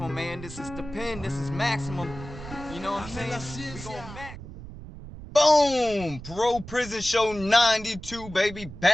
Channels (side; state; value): right; noise; rumble, 13 dB below the sound